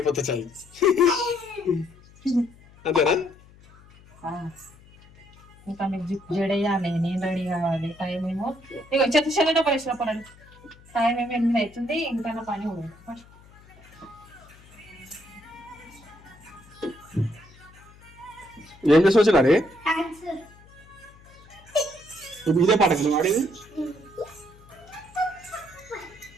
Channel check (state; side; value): noise; left; hum, 24 dB below the sound